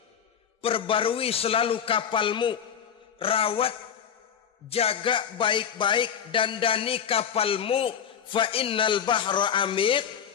Perbarui selalu kapalmu, rawat, jaga baik-baik, dandani kapalmu, fa innal bahra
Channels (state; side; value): quieter; right; 8.2 dB